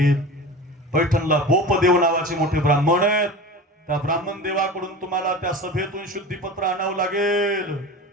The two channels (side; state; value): both; normal; correlation 0.33